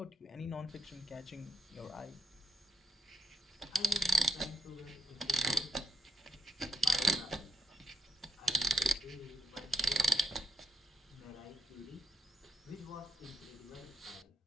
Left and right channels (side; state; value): both; normal; correlation 0.79